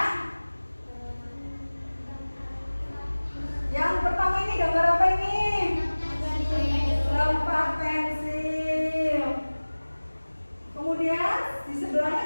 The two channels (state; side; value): inverted; both; correlation -1.00